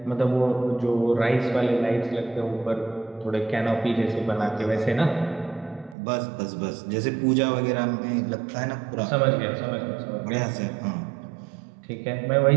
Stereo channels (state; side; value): drops out; left; at 6.0 s